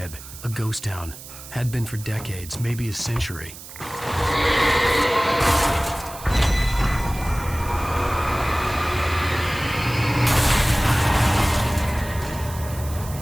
a ghost town. Had been for decades, maybe a century.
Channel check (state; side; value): noise; right; hiss, 15 dB below the sound